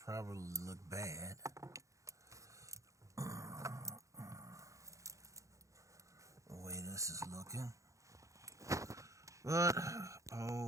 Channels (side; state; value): left; late; 0.15 ms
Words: look bad. The way this is looking. But,